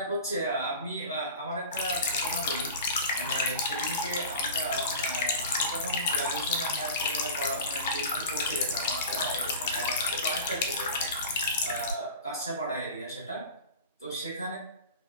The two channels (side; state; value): both; inverted; correlation -0.33